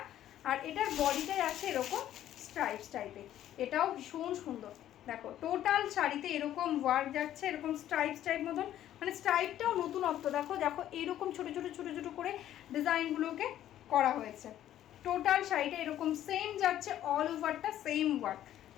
আর এটার বডিটাই আছে এরকম স্ট্রাইপস টাইপের, এটাও ভীষণ সুন্দর। দেখো টোটাল শাড়িতে এরকম ওয়ার্ক যাচ্ছে, এরকম স্ট্রাইপস টাইপ মতন, মানে স্ট্রাইপটাও নতুনত্ব, দেখো দেখো এরকম ছোটো ছোটো ছোটো ছোটো করে ডিজাইনগুলোকে করা হয়েছে। টোটাল শাড়িটা এরকম সেম যাচ্ছে, অল ওভারটা সেম ওয়ার্ক,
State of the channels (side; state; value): right; quieter; 12.0 dB